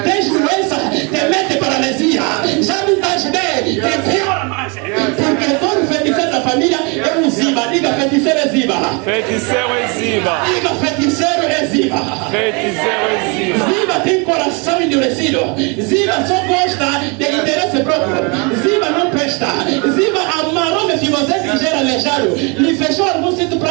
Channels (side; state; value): left; quieter; 31.7 dB